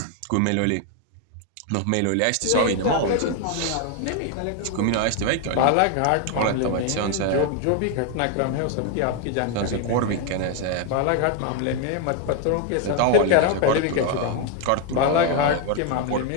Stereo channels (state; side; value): different; both; correlation 0.01